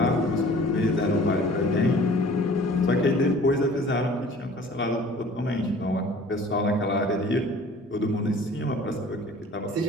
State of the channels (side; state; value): both; normal; correlation 0.48